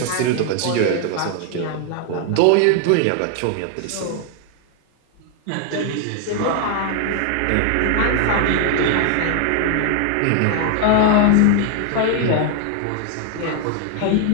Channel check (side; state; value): both; different; correlation 0.00